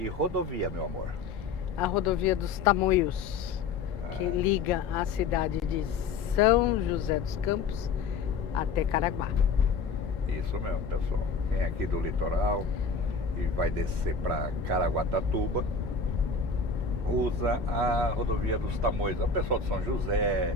rodovia, meu amor? A rodovia dos Tamoios, que liga a cidade de São José dos Campos até Caraguá. Isso mesmo, pessoal. Quem é aqui do litoral e vai descer para Caraguatatuba, usa a rodovia dos Tamoios. O pessoal de São José,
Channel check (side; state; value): right; quieter; 4.8 dB